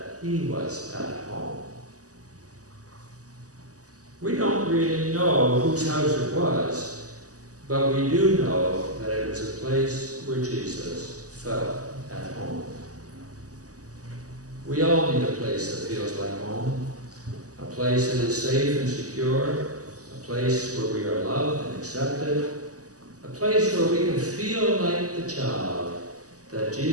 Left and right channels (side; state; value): left; late; 0.67 ms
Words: he was at home. We don't really know whose house it was, but we do know that it was a place where Jesus felt at home. We all need a place that feels like home, a place that is safe and secure, a place where we are loved and accepted, a place where we can feel like the child that